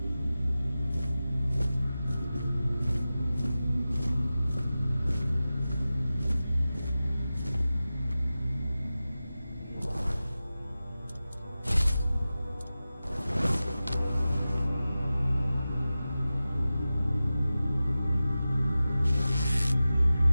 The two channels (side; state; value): both; inverted; correlation -0.95